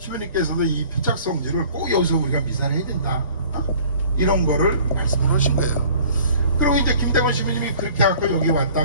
이 표착성지를 꼭 여기서 우리가 미사를 해야 된다. 이런 거를 말씀을 하신 거예요. 그리고 이제 김대건 시부님이 그렇게 하고 여기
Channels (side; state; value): both; inverted; correlation -0.50